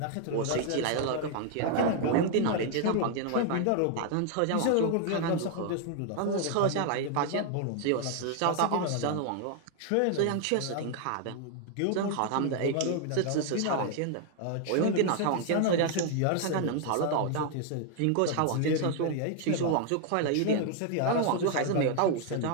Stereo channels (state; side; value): different; both; correlation 0.00